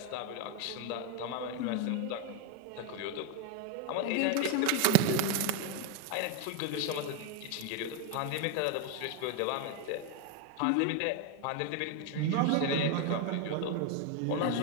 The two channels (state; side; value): different; both; correlation 0.02